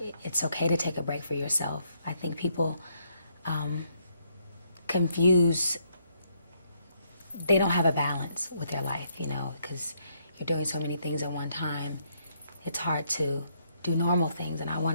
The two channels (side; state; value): both; inverted; correlation -0.73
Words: it's okay to take a break for yourself. I think people confuse, they don't have a balance with their life, you know, because you're doing so many things at one time. It's hard to do normal things, and I